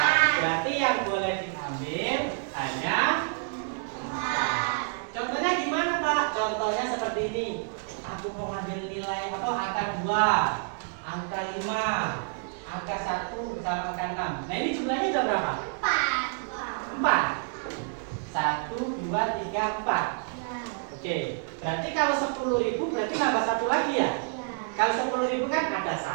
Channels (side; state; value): left; silent; 59 dB below the other